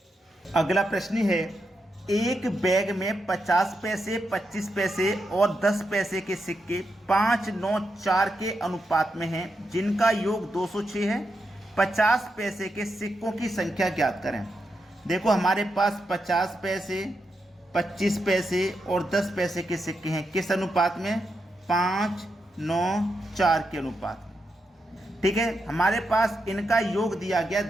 अगला प्रश्न है, एक बैग में 50 पैसे, 25 पैसे और 10 पैसे के सिक्के 5, 9, 4 के अनुपात में हैं, जिनका योग 206 है। 50 पैसे के सिक्कों की संख्या ज्ञात करें। देखो हमारे पास 50 पैसे, 25 पैसे और 10 पैसे के सिक्के हैं, किस अनुपात में? 5, 9, 4 के अनुपात में। ठीक है, हमारे पास इनका योग दिया गया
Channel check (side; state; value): both; normal; correlation 0.85